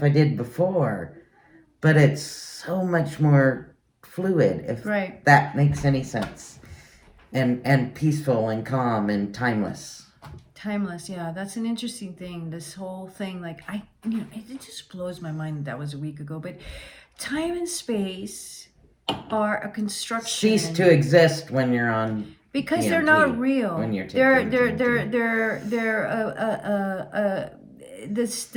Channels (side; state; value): both; identical; correlation 1.00